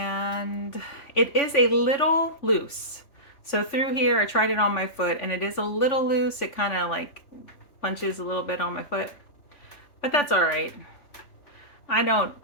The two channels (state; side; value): late; right; 3.5 ms